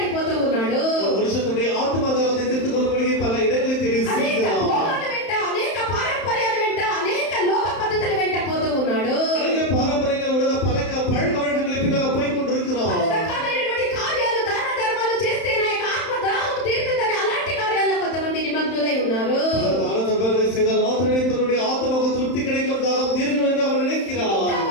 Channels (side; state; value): right; late; 31 ms